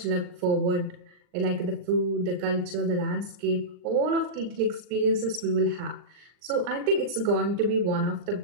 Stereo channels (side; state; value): left; late; 39 ms